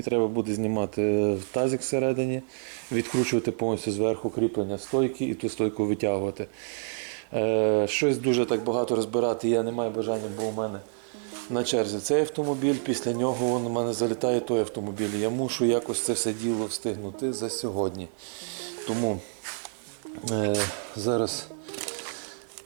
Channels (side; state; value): left; silent; digital silence